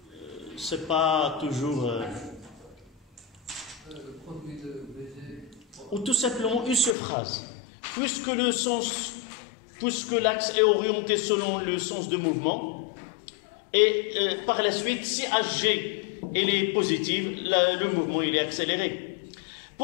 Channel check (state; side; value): drops out; right; at 7.0 s